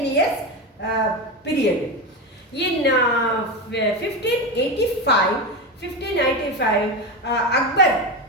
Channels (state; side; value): normal; both; correlation 0.18